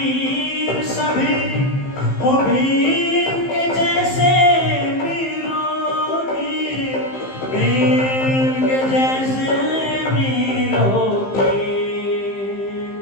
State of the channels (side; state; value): right; late; 15 ms